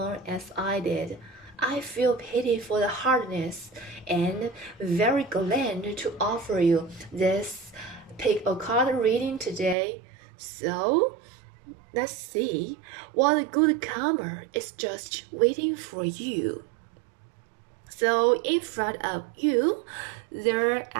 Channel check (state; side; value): drops out; left; at 9.8 s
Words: as I did, I feel pity for the hardness and very glad to offer you this pick a card reading today. So, let's see what good karma is just waiting for you. So, in front of you, there